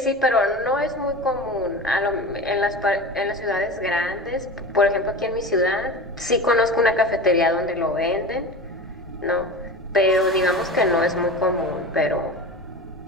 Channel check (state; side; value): noise; left; rumble, 23 dB below the sound